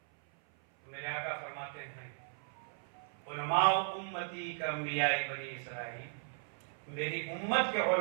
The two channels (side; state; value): left; silent; 53 dB below the other